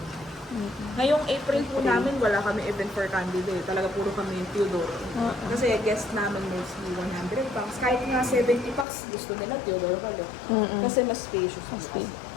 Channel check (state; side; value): drops out; right; at 8.8 s